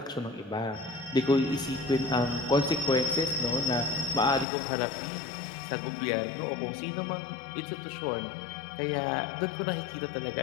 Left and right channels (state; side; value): drops out; right; at 4.5 s